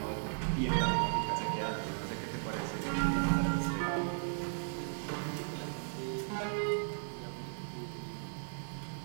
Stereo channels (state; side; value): silent; left; 54 dB below the other